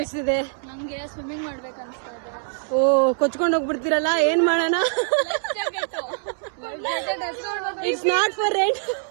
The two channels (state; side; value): silent; left; 63 dB below the other